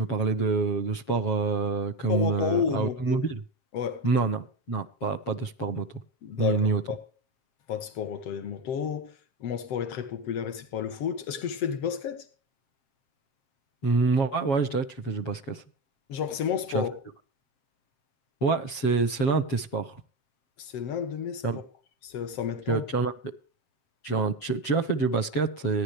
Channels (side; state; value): right; late; 7.4 ms